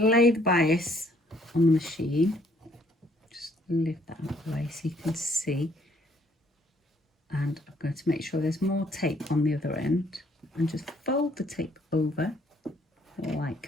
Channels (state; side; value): normal; both; correlation 0.65